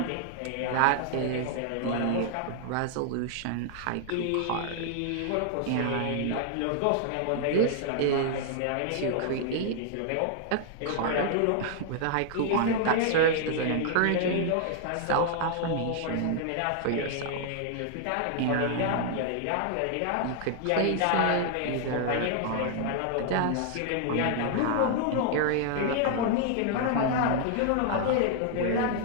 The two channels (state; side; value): different; both; correlation 0.00